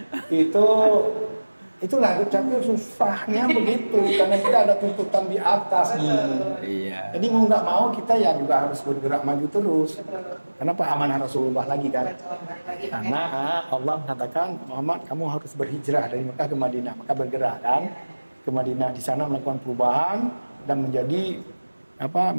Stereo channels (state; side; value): inverted; both; correlation -1.00